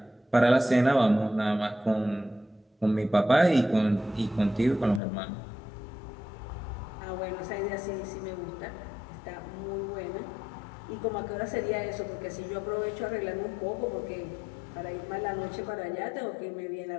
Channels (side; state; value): right; drops out; at 5.0 s